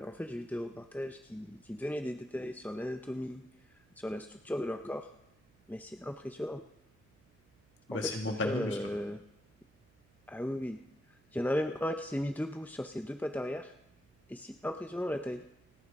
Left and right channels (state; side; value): noise; right; hum, 29 dB below the sound